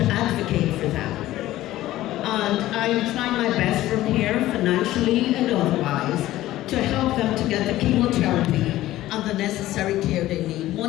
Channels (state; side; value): quieter; right; 15.3 dB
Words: advocate for them. And I'm trying my best from here, financially and otherwise, to help them to get the chemotherapy and the necessary care they need.